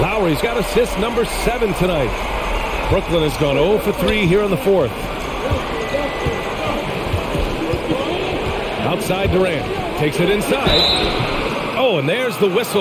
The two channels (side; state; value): both; identical; correlation 1.00